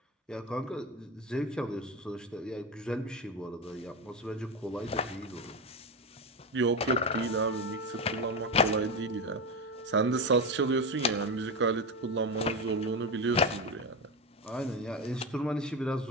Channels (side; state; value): both; normal; correlation 0.16